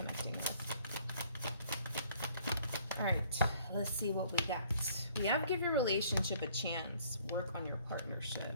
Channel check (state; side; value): inverted; both; correlation -0.60